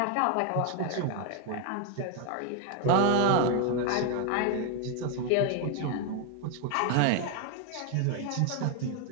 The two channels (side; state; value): both; different; correlation 0.01